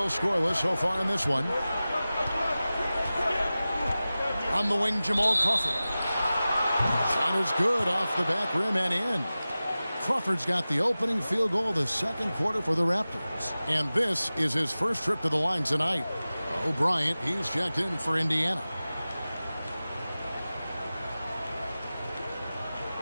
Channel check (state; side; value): inverted; both; correlation -0.96